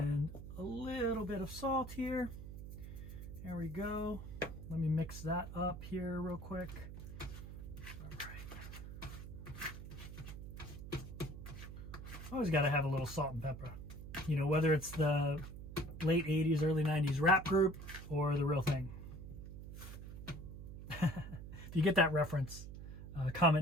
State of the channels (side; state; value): right; noise; hum, 11 dB below the sound